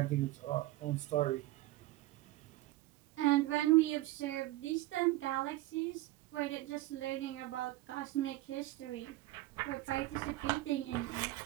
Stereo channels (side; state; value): left; quieter; 17.3 dB